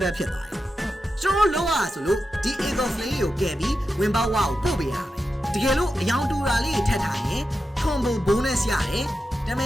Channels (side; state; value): both; normal; correlation 0.90